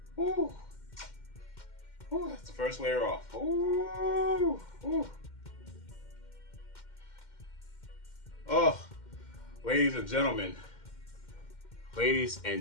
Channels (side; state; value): right; late; 2.1 ms